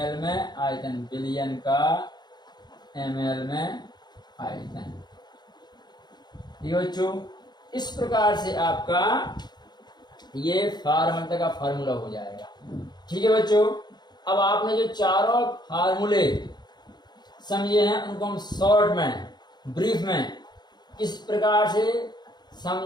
में आयतन, बिलियन का एम एल में आयतन। ठीक है बच्चों, इस प्रकार से आपका ये फार्मूला का फार्मूला हो जाएगा। ठीक है बच्चों, अब आपने जो चारों फार्मूले समझे हैं उनको हम शॉर्ट में, ब्रीफ में इस प्रकार से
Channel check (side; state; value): right; late; 0.21 ms